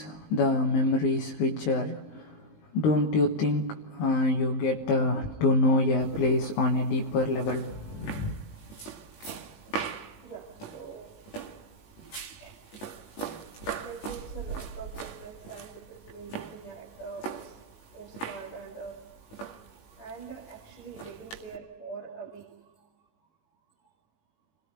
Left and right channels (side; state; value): right; late; 19 ms